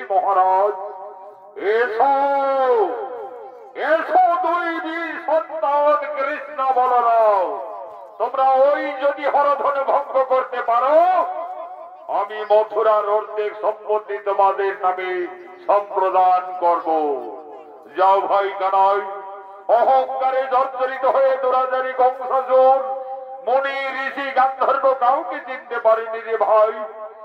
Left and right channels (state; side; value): identical; both; correlation 1.00